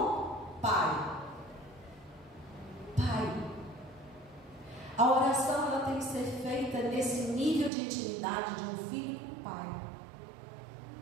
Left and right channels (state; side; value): drops out; left; at 7.7 s